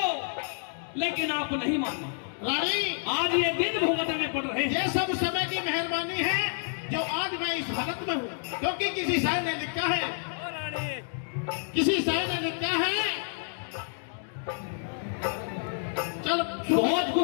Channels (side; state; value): right; silent; digital silence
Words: लेकिन आप नहीं माने। रानी, आज ये दिन भुगतने पड़ रहे हैं। ये सब समय की मेहरबानी है जो आज मैं इस हालत में हूँ, क्योंकि किसी शायर ने लिखा है, किसी शायर ने लिखा है, चल बहुत